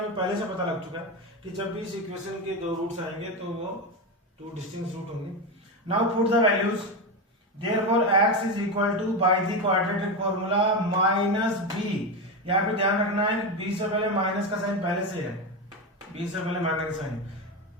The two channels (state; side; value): normal; both; correlation 0.15